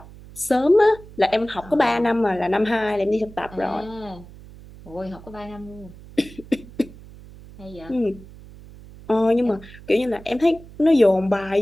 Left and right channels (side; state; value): right; noise; hum, 19 dB below the sound